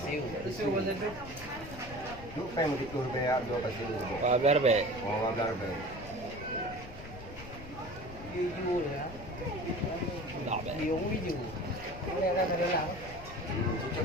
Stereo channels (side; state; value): left; noise; rumble, 14 dB below the sound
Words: Tisu macam tu. Lu pengen gitu bayar 2 pasir. Wah, biar baik. Oh, biar baik. Video ya. Tak baik. Video video. Boleh ada dalam. Cucuk